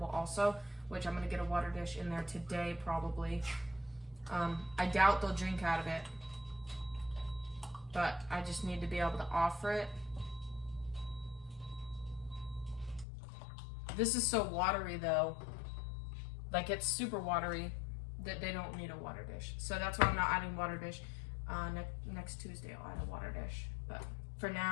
also, which I'm gonna get a water dish in there today probably. I doubt they'll drink out of it, but I just need to be able to offer it. This is so watery though, like it's super watery that they don't need a water dish. So that's why I'm not adding water dish. Next Tuesday I'll add a water dish, but for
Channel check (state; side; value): drops out; right; at 13.1 s